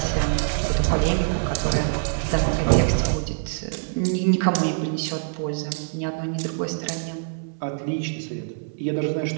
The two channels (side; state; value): left; silent; digital silence